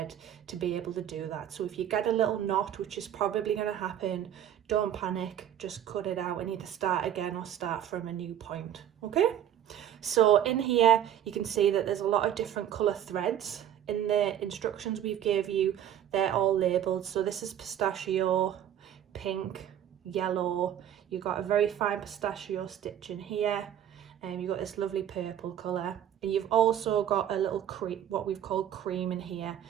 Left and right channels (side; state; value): left; quieter; 10.5 dB